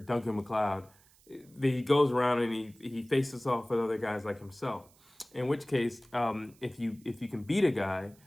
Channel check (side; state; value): right; noise; hiss, 28 dB below the sound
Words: MacLeod, he goes around and he faces off with other guys like himself. In which case, if you can beat a guy,